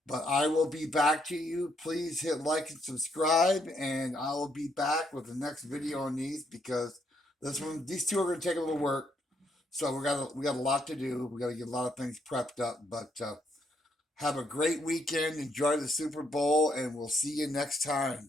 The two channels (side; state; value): both; normal; correlation 0.74